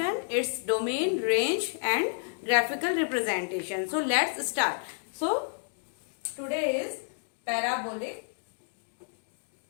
its domain, range and graphical representation. So let's start. So today is parabolic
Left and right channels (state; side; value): silent; right; digital silence